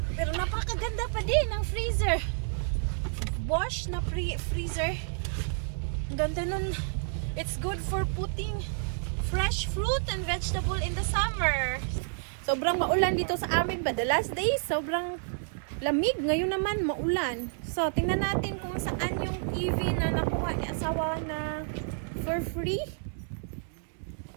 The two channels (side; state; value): left; silent; digital silence